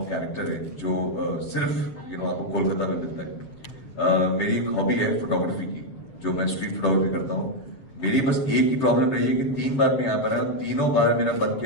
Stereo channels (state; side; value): late; right; 7.1 ms